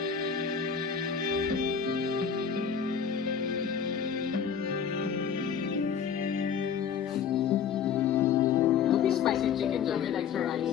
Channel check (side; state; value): right; quieter; 7.2 dB